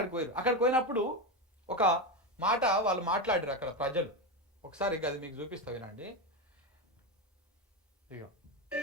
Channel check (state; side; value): normal; both; correlation 0.13